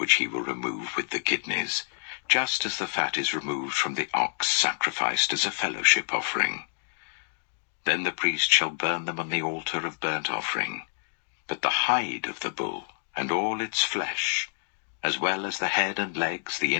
he will remove with the kidneys, just as the fat is removed from the ox sacrificed as a fellowship offering. Then the priest shall burn them on the altar of burnt offering. But the hide of the bull, and all its flesh, as well as the head and legs, the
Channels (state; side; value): silent; right; digital silence